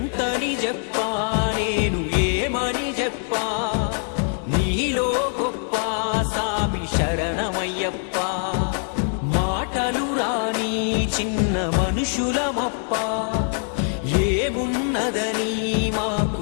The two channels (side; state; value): right; silent; 63 dB below the other